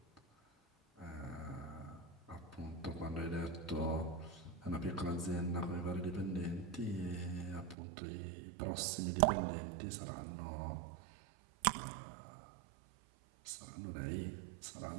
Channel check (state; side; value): drops out; left; at 7.8 s